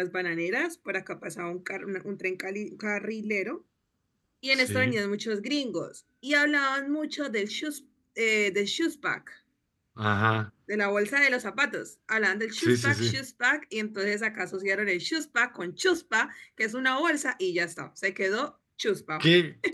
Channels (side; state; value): both; identical; correlation 1.00